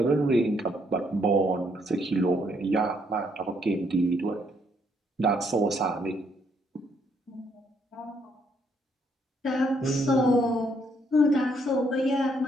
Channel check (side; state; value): both; normal; correlation 0.71